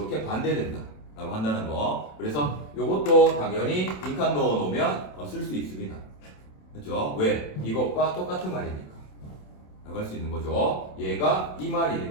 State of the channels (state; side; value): late; right; 27 ms